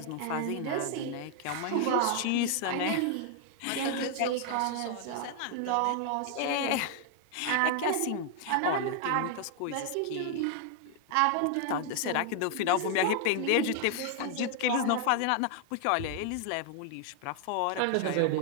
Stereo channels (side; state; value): both; different; correlation 0.00